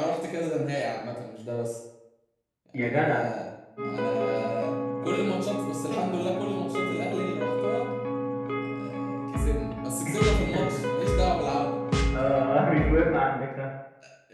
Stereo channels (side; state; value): both; identical; correlation 1.00